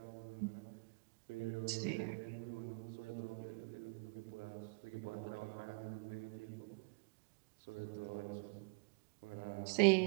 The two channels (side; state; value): left; quieter; 34.0 dB